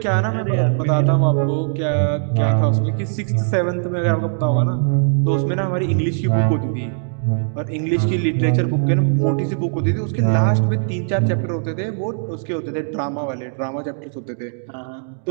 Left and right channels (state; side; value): silent; left; digital silence